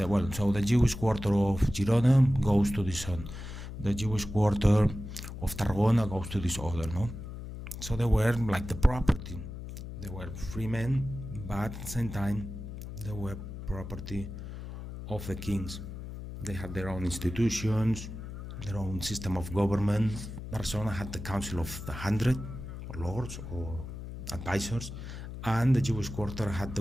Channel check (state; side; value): noise; left; hum, 9 dB below the sound